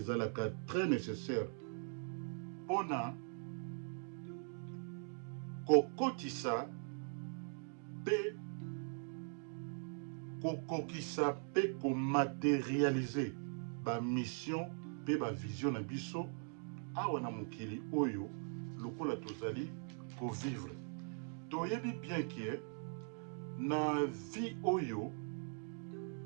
très nécessaire pona kokotisa pe kokokisa pe ko matérialiser ba mission pe ba vision na biso awa na mokili oyo lokola tozali ko vivre. Toyebi bien que na vie oyo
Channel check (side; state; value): left; silent; 50 dB below the other